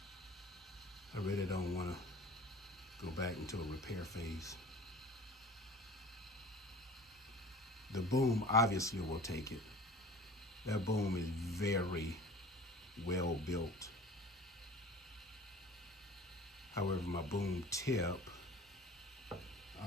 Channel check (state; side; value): normal; both; correlation 0.42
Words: I really don't want to go back into a repair phase. The boom obviously will take it. That boom is very well built. However, my boom tip,